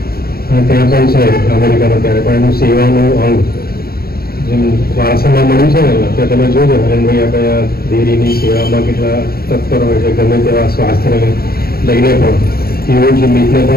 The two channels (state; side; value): late; right; 0.44 ms